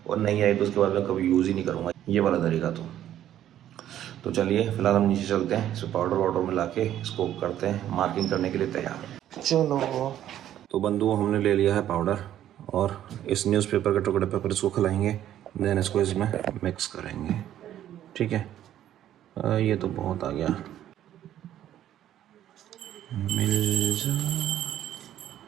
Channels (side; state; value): left; quieter; 11.6 dB